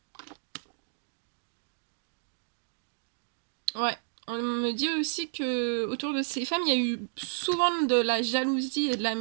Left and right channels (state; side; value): silent; left; digital silence